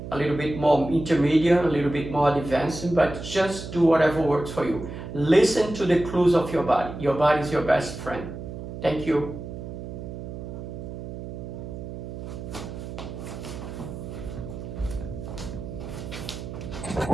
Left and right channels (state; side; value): noise; right; hum, 9 dB below the sound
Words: a little bit more intermediate, a little bit more advanced, but just do whatever works for you. Listen to the clues of your body. Your body is your best friend. Thank you.